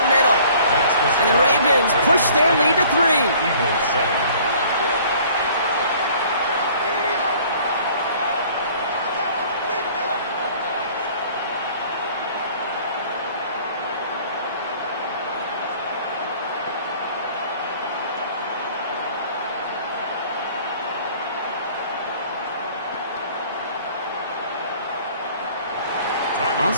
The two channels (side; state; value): both; inverted; correlation -0.53